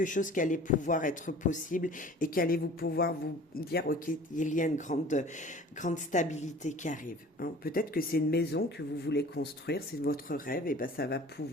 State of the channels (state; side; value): normal; both; correlation 0.45